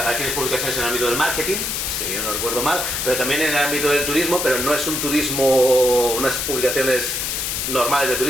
hay publicaciones en el ámbito del marketing, si yo no recuerdo mal, pero también en el ámbito del turismo, pero no es un turismo, unas publicaciones normales de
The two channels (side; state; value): left; noise; hiss, 1 dB below the sound